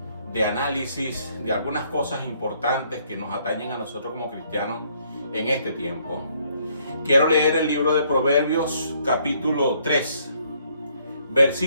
análisis de algunas cosas importantes que nos atañen a nosotros como cristianos en este tiempo. Quiero leer el libro de Proverbios capítulo 3,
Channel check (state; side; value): inverted; both; correlation -0.67